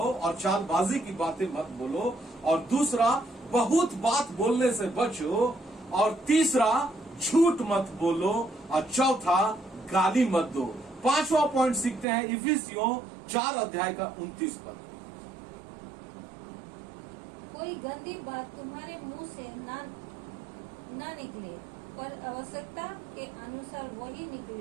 और चालबाजी की बातें मत बोलो, और दूसरा, बहुत बात बोलने से बचो, और तीसरा, झूठ मत बोलो, और चौथा, गाली मत दो। 5वां पॉइंट सीखते हैं इफिसियों 4 अध्याय का 29 पद। कोई गंदी बात तुम्हारे मुंह से ना निकले, पर आवश्यकता के अनुसार वही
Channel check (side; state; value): left; drops out; at 12.1 s